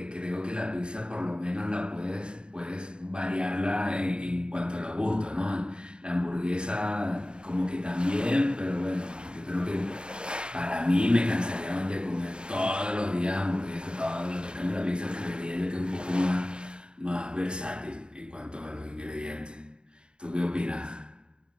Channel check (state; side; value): late; left; 0.051 ms